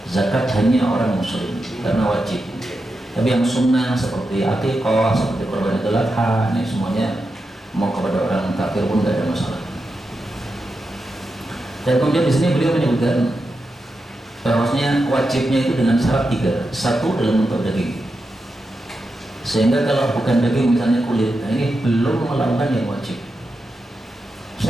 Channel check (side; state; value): both; normal; correlation 0.88